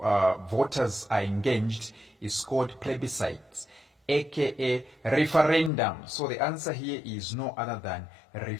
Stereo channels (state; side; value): drops out; right; at 5.7 s